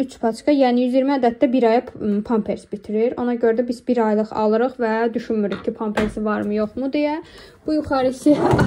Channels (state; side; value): identical; both; correlation 1.00